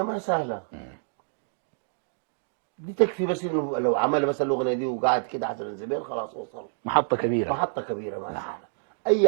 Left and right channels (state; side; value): silent; left; digital silence